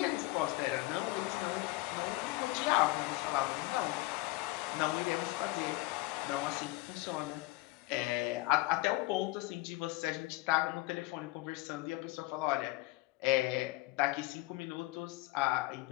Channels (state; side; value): quieter; right; 20.4 dB